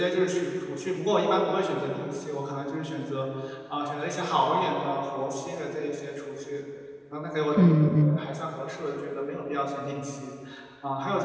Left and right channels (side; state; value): both; identical; correlation 1.00